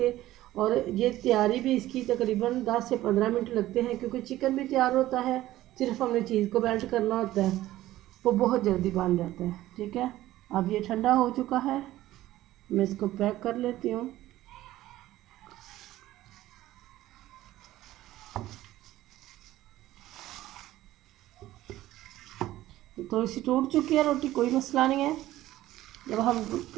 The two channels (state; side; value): quieter; left; 15.2 dB